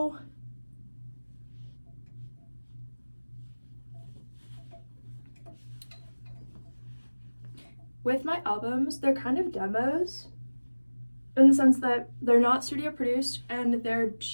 with my albums, they're kind of demos in the sense that they're not studio produced and they're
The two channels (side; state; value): both; inverted; correlation -1.00